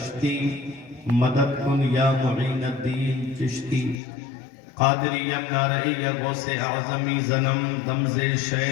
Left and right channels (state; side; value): drops out; right; at 4.0 s